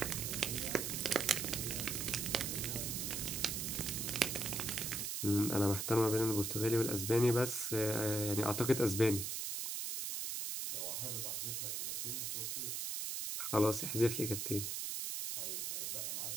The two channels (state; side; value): noise; right; hiss, 2 dB below the sound